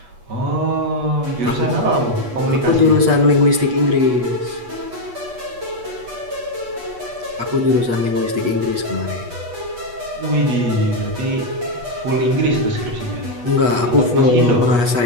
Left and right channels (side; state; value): left; late; 8.3 ms